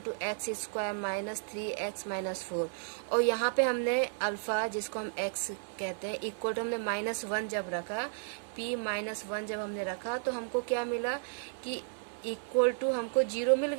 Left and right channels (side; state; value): left; silent; 56 dB below the other